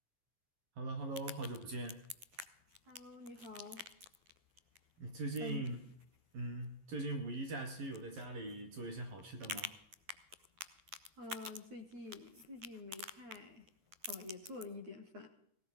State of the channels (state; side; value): late; left; 11 ms